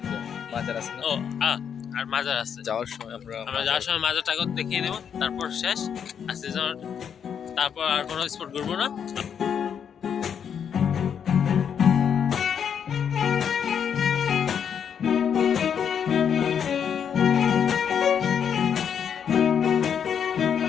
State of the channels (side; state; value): right; quieter; 7.8 dB